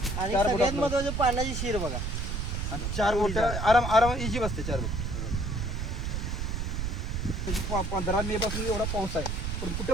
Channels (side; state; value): right; noise; rumble, 2 dB below the sound